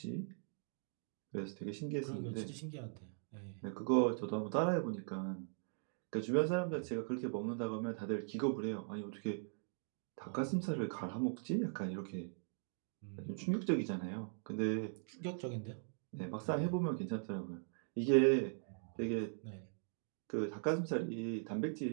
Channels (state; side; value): silent; left; digital silence